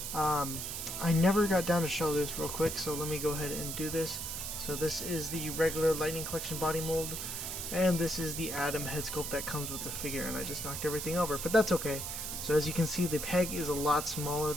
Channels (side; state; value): right; noise; hiss, 5 dB below the sound